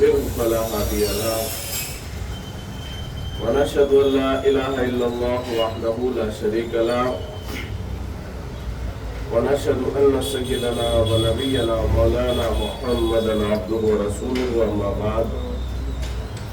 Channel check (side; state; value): both; identical; correlation 1.00